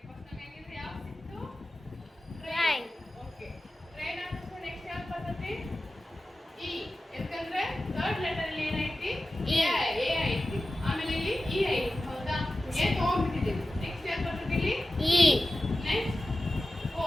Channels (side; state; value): both; normal; correlation 0.94